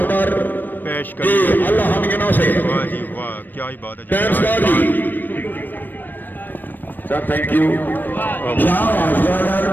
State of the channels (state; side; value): late; right; 0.091 ms